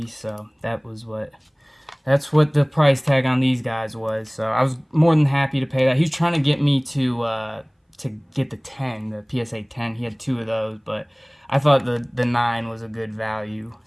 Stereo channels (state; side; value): identical; both; correlation 1.00